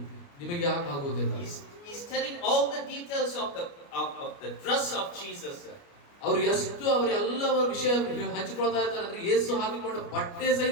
ನಿಮಗೆ ಯಾಕೆ ಆಗುವುದಿಲ್ಲ? He's telling all the details of the dress of Jesus. ಅವರು ಎಷ್ಟು ಅವರೆಲ್ಲ ವಿಷಯ ಹಂಚಿಕೊಳ್ತಾ ಇದ್ದಾರೆ ಅಂದ್ರೆ ಯೇಸು ಹಾಕಿಕೊಂಡ ಬಟ್ಟೆ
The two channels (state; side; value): late; right; 29 ms